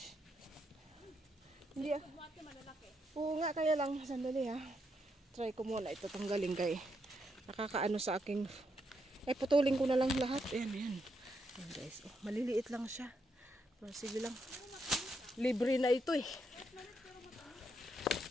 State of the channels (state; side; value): normal; both; correlation 0.79